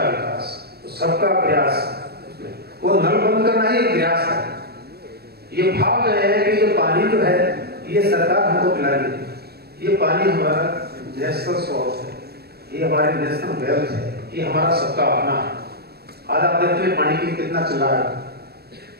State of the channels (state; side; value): late; left; 0.46 ms